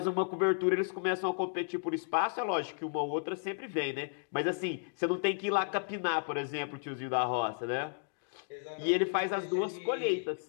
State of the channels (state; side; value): silent; right; digital silence